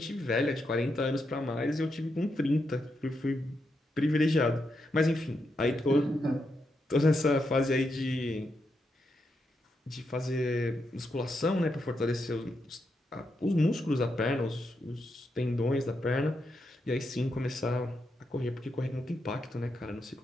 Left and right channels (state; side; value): normal; both; correlation 0.83